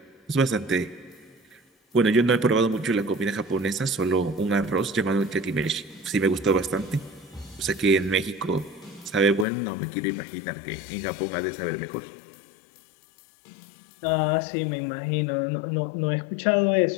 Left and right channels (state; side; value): drops out; right; at 9.5 s